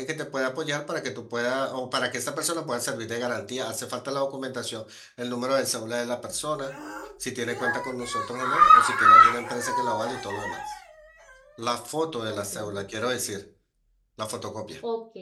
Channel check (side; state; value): both; identical; correlation 1.00